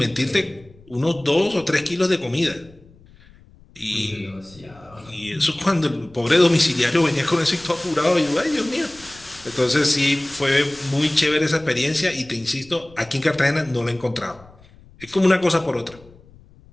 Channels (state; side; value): noise; left; rumble, 25 dB below the sound